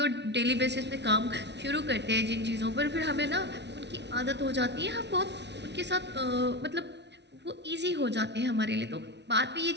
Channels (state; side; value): late; left; 0.50 ms